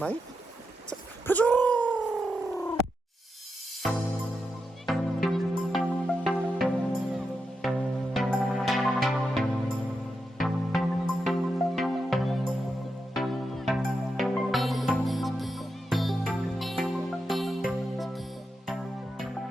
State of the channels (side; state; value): both; normal; correlation 0.87